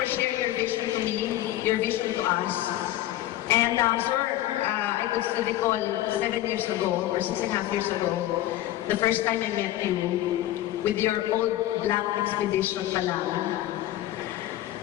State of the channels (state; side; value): quieter; right; 14.4 dB